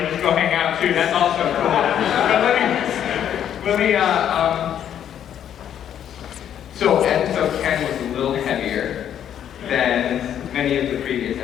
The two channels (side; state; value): right; quieter; 9.8 dB